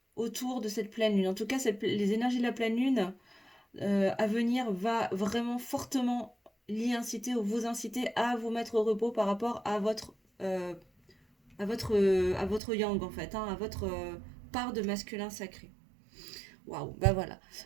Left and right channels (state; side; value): drops out; left; at 12.6 s